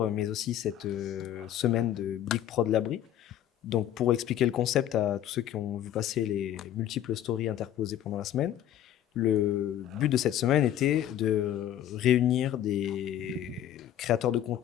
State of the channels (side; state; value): right; quieter; 11.3 dB